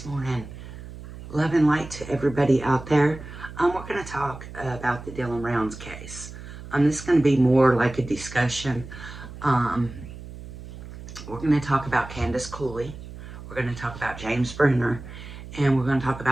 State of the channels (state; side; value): noise; right; hum, 13 dB below the sound